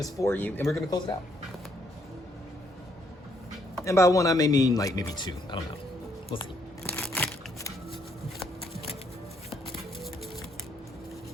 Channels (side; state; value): both; normal; correlation 0.71